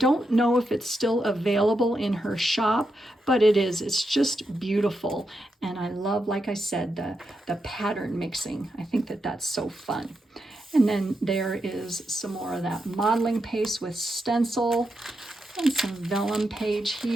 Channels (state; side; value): normal; both; correlation 0.85